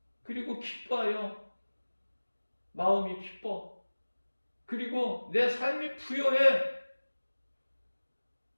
그리고 기뻐요. 마음이 기뻐. 그리고 내 삶이 부여해.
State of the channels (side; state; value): both; inverted; correlation -1.00